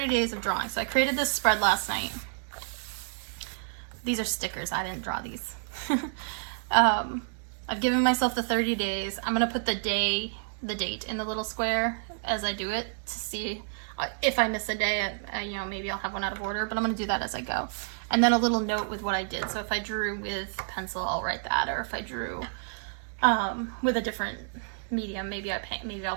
days of drawing. So I created this spread last night. These are stickers. I didn't draw these. I've given myself the 30 days. I'm going to put the date in the little square as I do it to see if I miss a day, you know, maybe I'll have one out of order, but I'm going to do that as I go. And then a little note with what I did. So if I drew with pencil, I'll write that. Or if I drew with a different medium, maybe I'll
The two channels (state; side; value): silent; left; digital silence